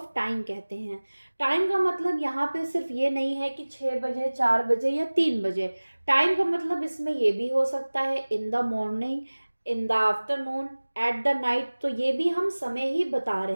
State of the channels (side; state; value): both; inverted; correlation -1.00